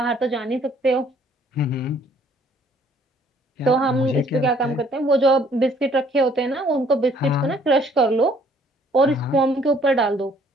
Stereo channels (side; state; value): both; normal; correlation 0.61